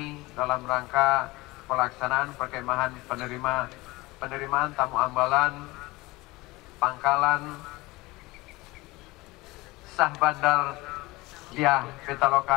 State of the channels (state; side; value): quieter; right; 21.4 dB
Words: dalam rangka pelaksanaan perkemahan penerimaan tamu ambalan pangkalan Syah Bandar Diah